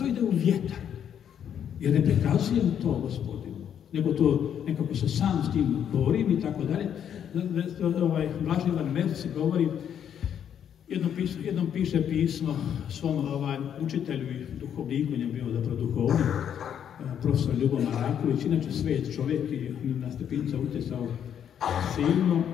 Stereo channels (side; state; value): right; quieter; 9.0 dB